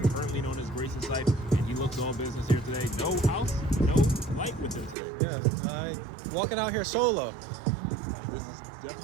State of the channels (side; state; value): left; drops out; at 5.0 s